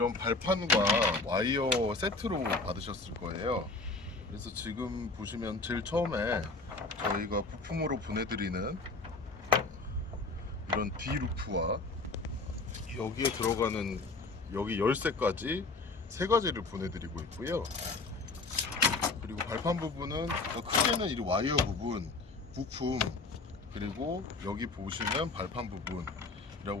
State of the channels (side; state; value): right; quieter; 3.5 dB